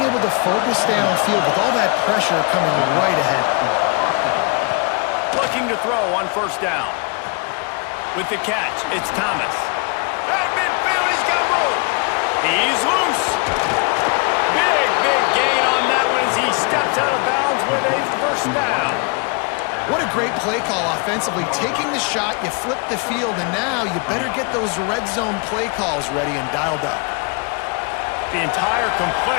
able to focus downfield with all that pressure coming right ahead. Looking to throw on 1st down. With the catch, it's Thomas. At midfield, he's got room. He's loose. Big gain on that one as he steps out of bounds with a 1st down. What a great play call offensively. Taking the shot, you flip the field, and now you better get those red zone play calls ready and dialed up. The entire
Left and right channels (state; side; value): quieter; right; 33.6 dB